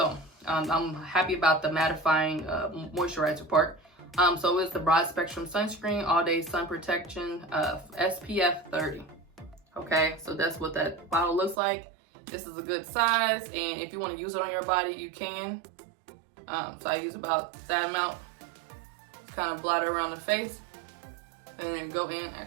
I'm happy about the mattifying moisturizer part. So it's the broad spectrum sunscreen, all day sun protection, SPF 30. Okay, so that's what that bottle looks like. This is a good size, and if you want to use it on your body, you can. So I use about that amount, kind of blot it around the face, and then go in.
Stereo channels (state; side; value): drops out; left; at 11.6 s